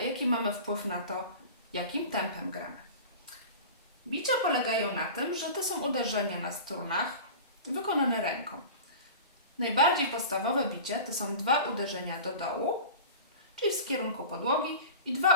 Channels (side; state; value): both; inverted; correlation -0.36